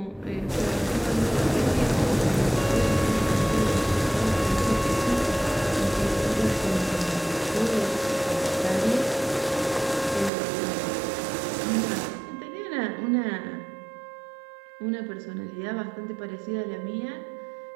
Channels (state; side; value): drops out; left; at 10.3 s